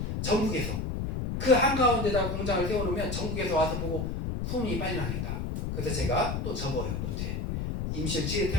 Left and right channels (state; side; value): noise; left; rumble, 2 dB below the sound